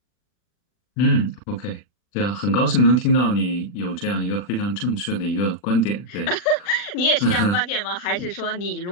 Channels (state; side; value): late; right; 40 ms